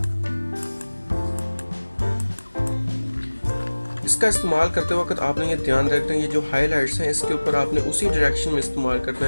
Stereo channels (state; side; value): inverted; both; correlation -1.00